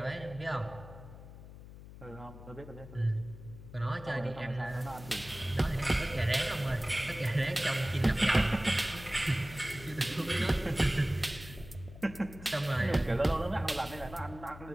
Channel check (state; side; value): noise; left; hum, 16 dB below the sound